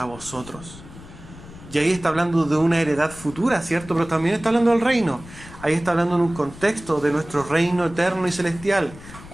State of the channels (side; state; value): left; noise; rumble, 17 dB below the sound